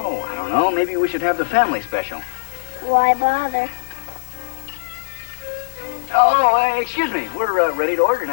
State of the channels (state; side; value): silent; right; digital silence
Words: I don't know. Maybe we should have the family special. Why bother? Oh, excuse me. We're ready to order